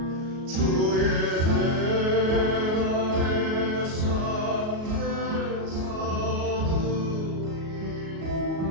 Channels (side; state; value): left; late; 37 ms